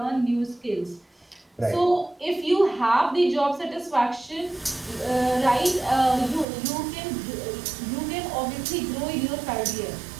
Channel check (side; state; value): left; drops out; at 6.5 s